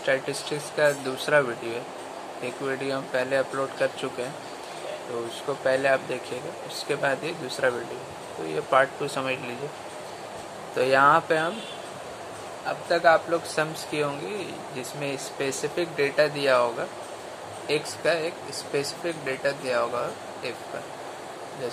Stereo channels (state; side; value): identical; both; correlation 1.00